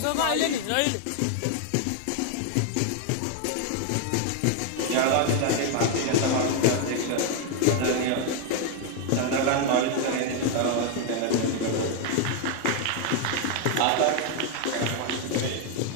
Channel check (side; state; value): both; different; correlation 0.01